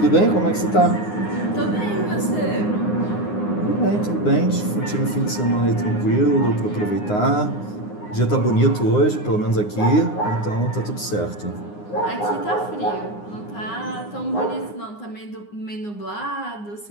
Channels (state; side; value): late; right; 9.7 ms